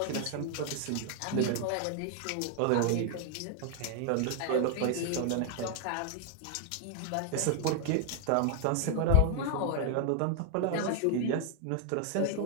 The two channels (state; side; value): different; both; correlation 0.00